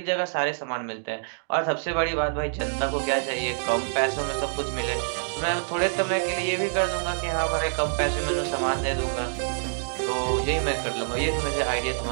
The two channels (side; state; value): left; silent; digital silence